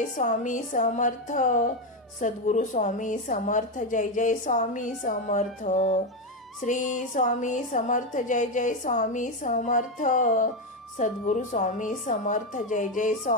स्वामी समर्थ। सद्गुरु स्वामी समर्थ जय जय स्वामी समर्थ। श्री स्वामी समर्थ जय जय स्वामी समर्थ। सद्गुरु स्वामी समर्थ जय जय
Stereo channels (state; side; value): normal; both; correlation 0.09